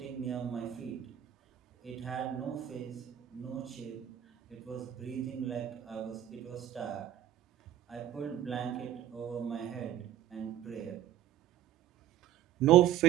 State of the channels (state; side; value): quieter; left; 11.6 dB